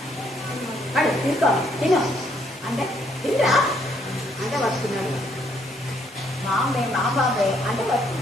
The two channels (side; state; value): both; normal; correlation 0.69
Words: వాడు తీసుకో తిను అంటే తింటా అంటే వస్తున్నాడు. మా బాబే అంటే